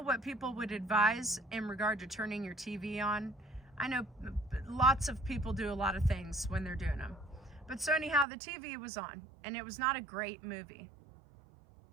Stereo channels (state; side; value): drops out; left; at 8.2 s